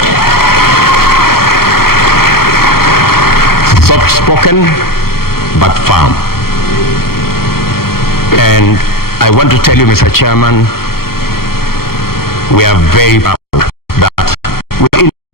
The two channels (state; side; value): late; right; 0.94 ms